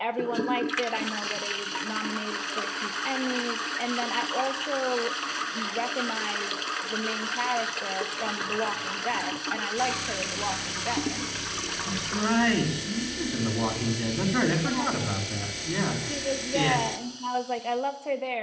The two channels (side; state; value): both; identical; correlation 1.00